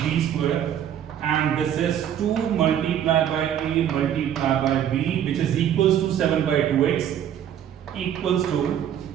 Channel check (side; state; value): left; quieter; 9.9 dB